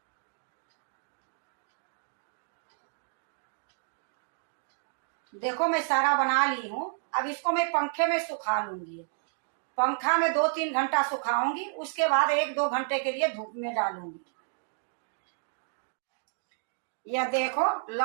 देखो मैं सारा बना ली हूँ। अब इसको मैं पंखे में सुखा लूंगी। पंखा में 2-3 घंटा सुखाऊंगी, उसके बाद 1-2 घंटे के लिए धूप में डालूंगी। यह देखो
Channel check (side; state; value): left; silent; digital silence